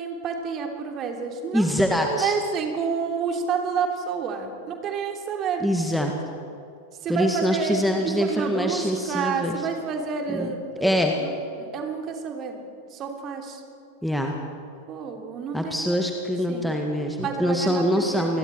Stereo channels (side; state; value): both; normal; correlation 0.59